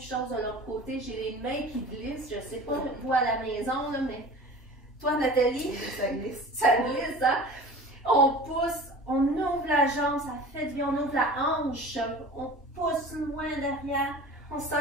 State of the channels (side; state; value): both; normal; correlation 0.39